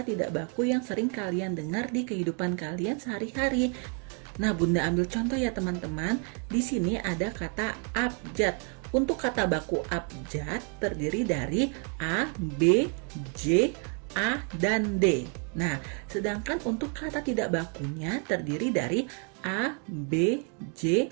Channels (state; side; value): quieter; left; 39.1 dB